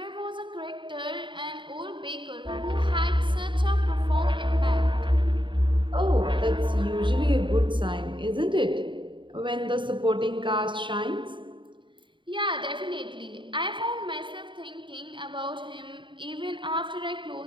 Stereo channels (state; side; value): late; left; 0.23 ms